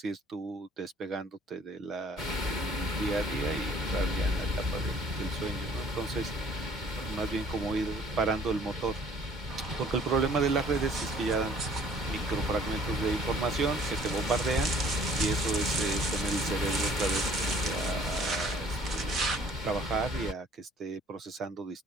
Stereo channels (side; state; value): both; normal; correlation 0.56